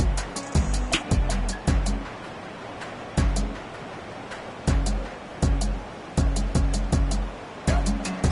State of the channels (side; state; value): both; identical; correlation 1.00